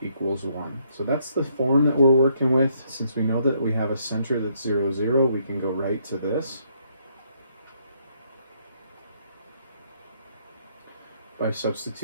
equals 1. So that's the form that we're working with. Since we know that we have a center that's 0, 0, we can go right to this by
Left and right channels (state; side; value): inverted; both; correlation -0.71